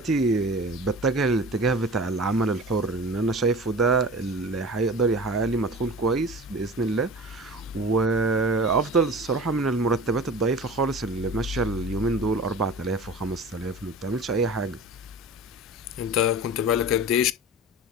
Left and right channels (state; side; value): normal; both; correlation 0.37